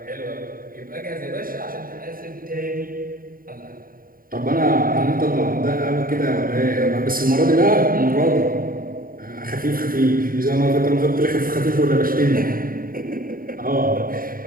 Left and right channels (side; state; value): left; late; 0.41 ms